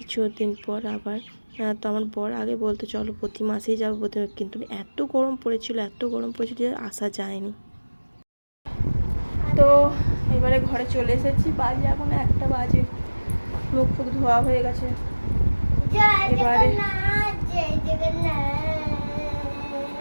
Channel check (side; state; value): both; inverted; correlation -1.00